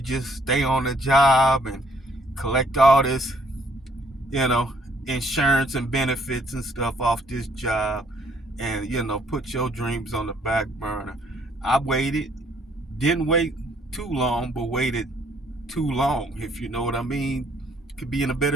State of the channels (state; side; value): normal; both; correlation 0.66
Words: just stay on the job and collect all this, insurance and benefits and stuff off this job and, put your dreams on the back burner. I waited, didn't wait too long, but waited too long, if you know what I mean. Could be in a